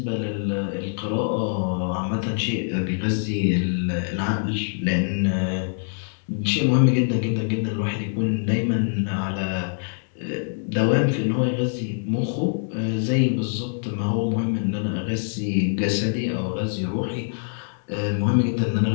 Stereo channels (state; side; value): silent; right; digital silence